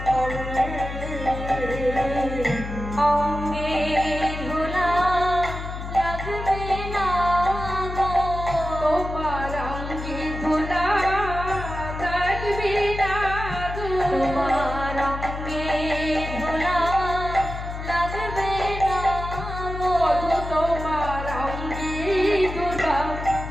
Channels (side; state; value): left; noise; hum, 7 dB below the sound